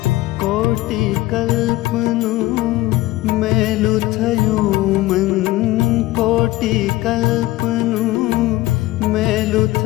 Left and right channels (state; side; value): quieter; right; 17.7 dB